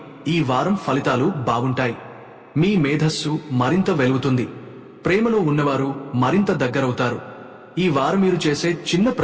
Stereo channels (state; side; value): identical; both; correlation 1.00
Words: ఈ వారం ఫలితాలు బాగుంటాయి. మీ మేధస్సు మరింత వెలుగుతుంది. ప్రేమలో ఉన్నవారు మరింత దగ్గరవుతారు. ఈ వారం మీరు చేసే చిన్న